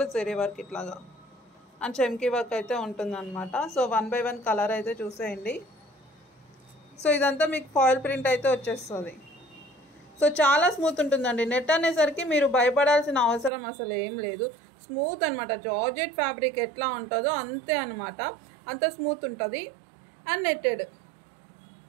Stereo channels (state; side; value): drops out; left; at 13.5 s